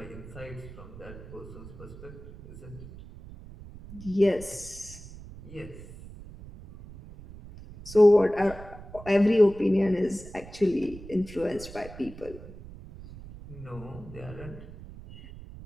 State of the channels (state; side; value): noise; right; rumble, 15 dB below the sound